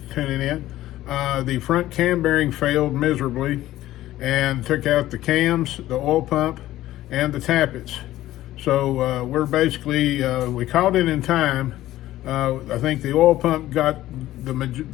tuning in. The front cam bearing failed miserably and took out the cams, the oil pump, and the tappets. So we're basically, we caught it in time. I think the oil pump got the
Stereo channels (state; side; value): quieter; right; 14.8 dB